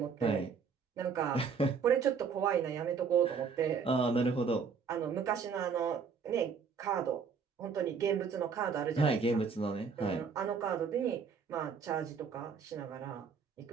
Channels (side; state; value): left; quieter; 5.9 dB